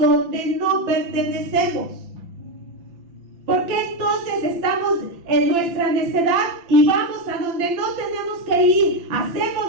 no pertenecemos? ¿Por qué entonces estamos en nuestra necedad y vamos a donde no tenemos que ir? Hacemos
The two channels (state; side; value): late; left; 5.9 ms